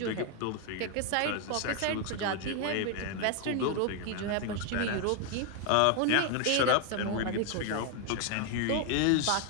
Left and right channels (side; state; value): both; different; correlation 0.01